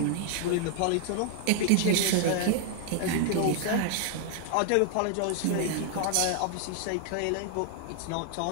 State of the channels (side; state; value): both; different; correlation 0.00